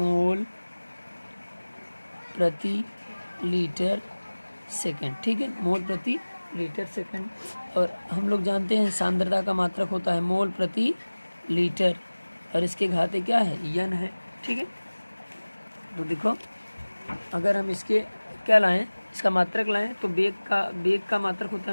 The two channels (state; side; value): inverted; both; correlation -1.00